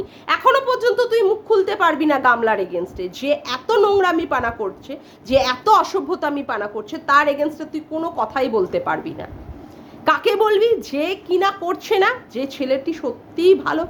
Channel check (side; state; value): both; identical; correlation 1.00